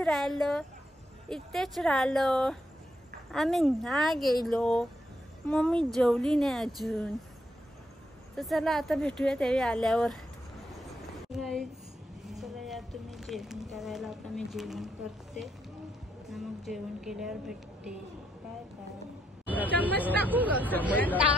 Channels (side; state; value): both; normal; correlation 0.78